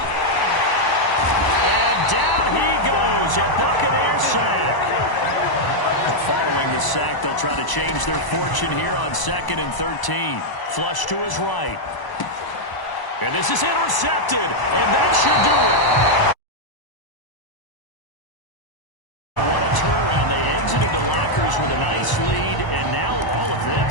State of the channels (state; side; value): late; right; 1.0 ms